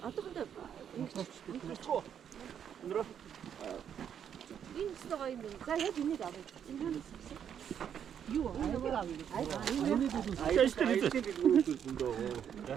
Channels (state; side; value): quieter; left; 8.6 dB